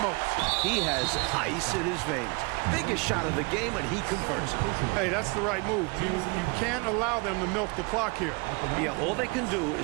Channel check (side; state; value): left; quieter; 30.0 dB